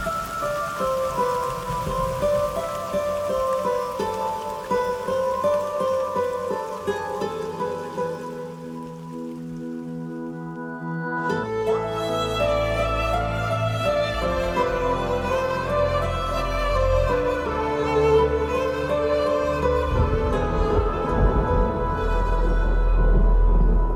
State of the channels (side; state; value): both; identical; correlation 1.00